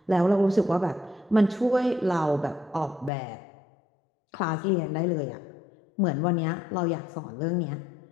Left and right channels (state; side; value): drops out; right; at 3.1 s